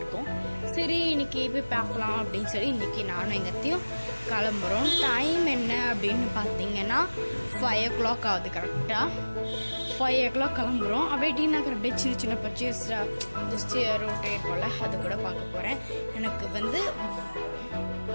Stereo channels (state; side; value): inverted; both; correlation -1.00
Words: இருக்கோம். சரி இன்றைக்கி போய் பார்க்கலாம் அப்படின்னு சொல்லி இன்றைக்கி நானும் எங்கத்தையும் கிளம்புறோம். டைம் என்ன அப்படின்னு பார்த்தீங்கன்னா 5 o'clock ஆகுது. கரெக்டாக 5 o'clock கிளம்புறோம். அப்படியே டி நகர் அப்படியே சின்ன சின்ன பர்ச்சேஸ் ஜஸ்ட் ரோட்டே இருக்கும்ல, அது கூட பார்க்க போகிறேன். எனக்கு